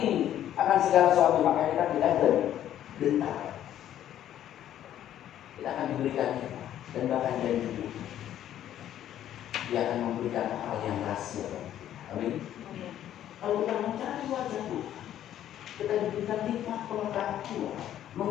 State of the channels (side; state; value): right; quieter; 11.4 dB